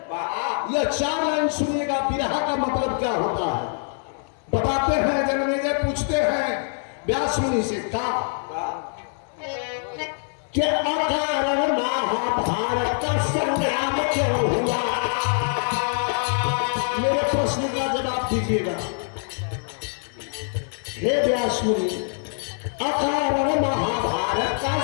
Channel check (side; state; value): right; silent; 62 dB below the other